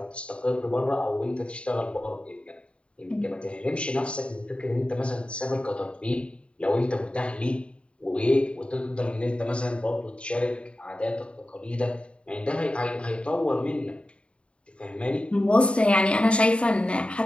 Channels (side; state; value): right; late; 0.058 ms